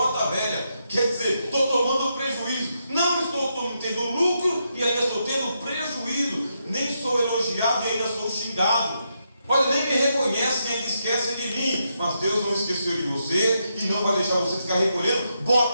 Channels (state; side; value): inverted; both; correlation -0.82